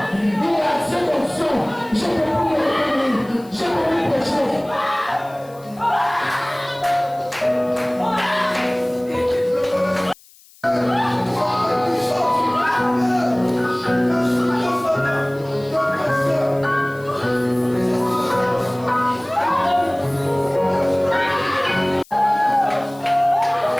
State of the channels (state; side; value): noise; left; hiss, 26 dB below the sound